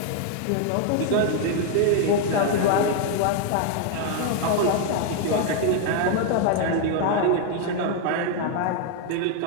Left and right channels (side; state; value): both; different; correlation 0.00